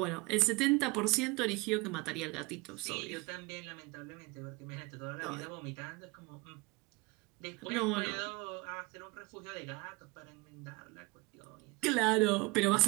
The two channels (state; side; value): quieter; left; 25.2 dB